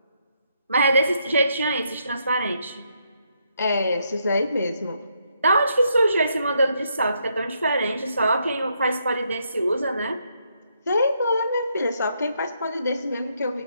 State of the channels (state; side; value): inverted; both; correlation -0.76